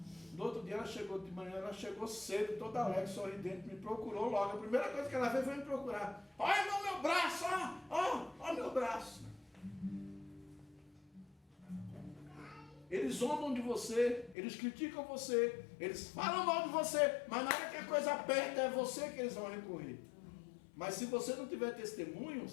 No outro dia ela chegou de manhã, ela chegou cedo, toda alegre, sorridente, me procurou logo. A primeira coisa que ela fez foi me procurar. Olha meu braço, ó meu braço. Eles zombam de você, eles criticam você, eles falam mal de você, mas na hora que a coisa aperta é você que eles vão recorrer. Mas se você não tiver testemunho,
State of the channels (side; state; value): right; drops out; at 14.4 s